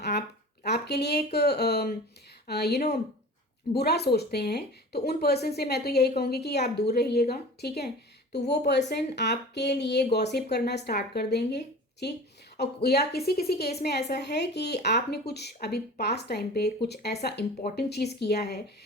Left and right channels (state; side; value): normal; both; correlation 0.38